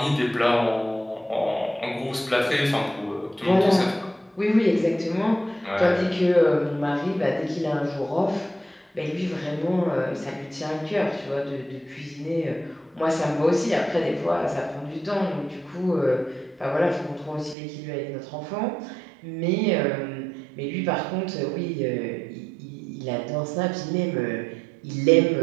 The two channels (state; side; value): drops out; left; at 17.6 s